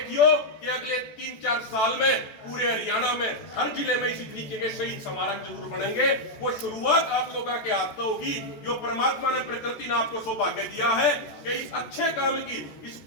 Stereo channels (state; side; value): late; right; 14 ms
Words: कि अगले 3-4 साल में पूरे हरियाणा में हर जिले में इसी तरीके के शहीद स्मारक जरूर बनेंगे। वो शुरुआत आप लोगों के हाथ से होगी, जो परमात्मा ने प्रकृति ने आपको सौभाग्य दिया है कि इस अच्छे काम की, इस